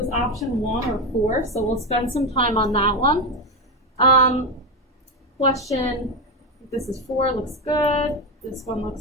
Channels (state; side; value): normal; both; correlation 0.12